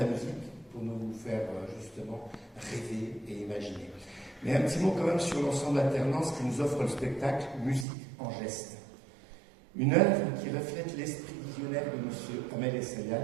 la musique pour nous faire justement rêver et imaginer. Mais un petit mot quand même sur l'ensemble alternance qui nous offre le spectacle Musique en geste. Une œuvre qui reflète l'esprit visionnaire de M. Ahmed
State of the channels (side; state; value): left; drops out; at 7.9 s